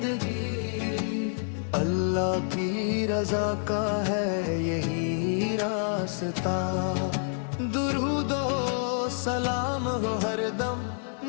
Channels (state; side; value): silent; right; digital silence